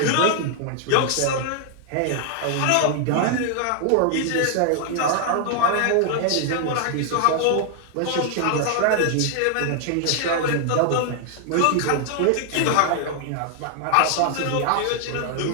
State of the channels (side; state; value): both; different; correlation 0.00